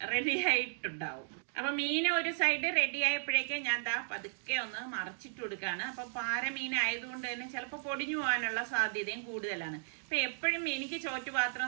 ആയിട്ടുണ്ടാവും. അപ്പൊ മീൻ ഒരു സൈഡ് റെഡി ആയപ്പോഴേക്കും ഞാൻ ദാ പതുക്കെ ഒന്ന് മറച്ചിട്ട് കൊടുക്കാണ്. അപ്പൊ പാരമീൻ ആയതുകൊണ്ട് തന്നെ ചിലപ്പോൾ പൊടിഞ്ഞു പോകാനുള്ള സാധ്യതയും കൂടുതലാണ്. അപ്പൊ എപ്പോഴും എനിക്ക് ചോറ്റുപാത്രം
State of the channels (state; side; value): silent; left; digital silence